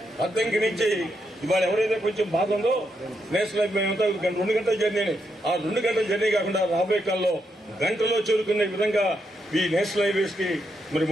అద్దంకి నుంచి ఇవాళ ఎవరైతే కొంచెం బాధ ఉందో నేషనల్ హైవే 2 గంటల జర్నీ, ఆ 2 గంటల జర్నీ కాకుండా రాబోయే కాలంలో గంటలో చేరుకునే విధంగా ఈ నేషనల్ హైవేస్ కి మరి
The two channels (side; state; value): both; normal; correlation 0.81